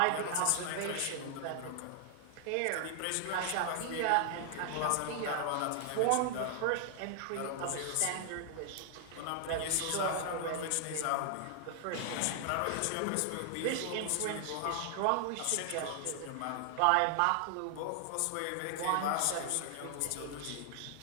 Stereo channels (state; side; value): different; both; correlation 0.00